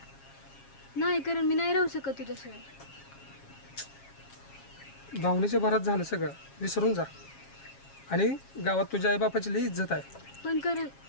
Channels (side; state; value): right; late; 7.3 ms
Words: नाही, कारण मी नाही राहू शकत तुझ्याशिवाय. भावनेच्या भरात झालं सगळं, विसरून जा. आणि गावात तुझ्या आईबापाची लई इज्जत आहे. पण कारण